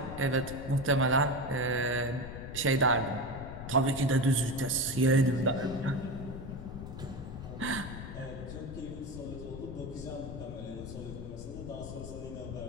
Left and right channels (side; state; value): left; noise; rumble, 9 dB below the sound